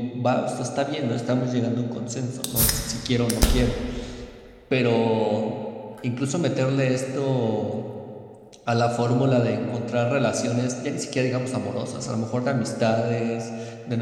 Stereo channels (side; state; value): both; identical; correlation 1.00